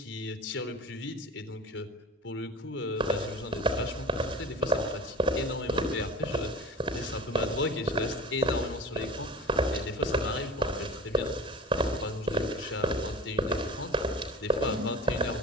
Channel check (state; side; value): normal; both; correlation 0.36